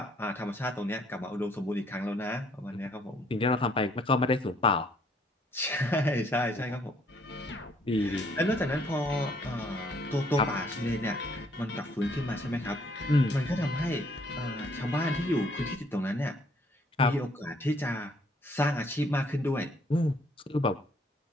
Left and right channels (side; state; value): both; normal; correlation 0.64